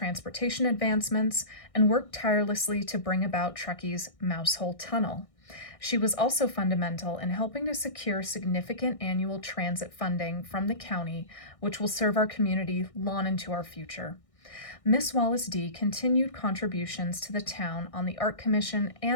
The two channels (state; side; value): late; right; 1.6 ms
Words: advancements and worked tirelessly to bring about Truckee's Mousehole Tunnel. She was also fundamental in helping to secure significant annual transit funding from the county, which will serve our community long into our future. Ms. Wallace D. continued contributions to the town on the Art Commission